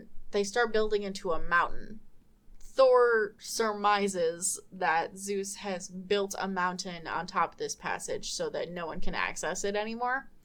they start building into a mountain. Thor surmises that Zeus has built a mountain on top of this passage so that no one can access it anymore.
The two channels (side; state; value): both; identical; correlation 1.00